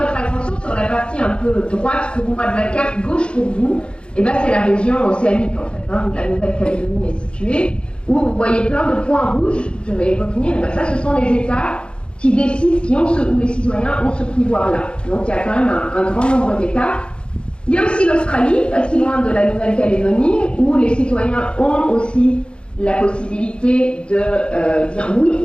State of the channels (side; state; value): right; late; 0.055 ms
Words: attention sur la partie un peu droite pour moi de la carte, gauche pour vous. Et bien, c'est la région océanique, en fait, où la Nouvelle-Calédonie est située, où vous voyez plein de points rouges, je vais y revenir, et bien ça, ce sont les États qui décident, où les citoyens ont ce pouvoir-là. Donc, il y a quand même un grand nombre d'États. Il y a aussi l'Australie, pas si loin de la Nouvelle-Calédonie, où les citoyens ont aussi la possibilité de dire oui